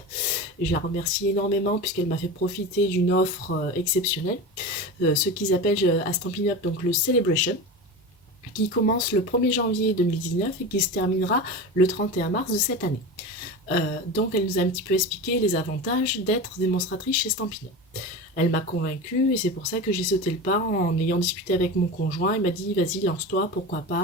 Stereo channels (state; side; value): normal; both; correlation 0.27